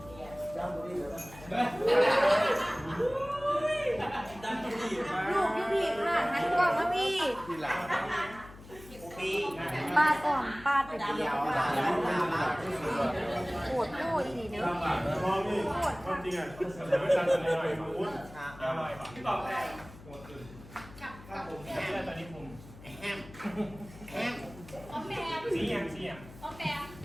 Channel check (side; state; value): left; noise; hum, 18 dB below the sound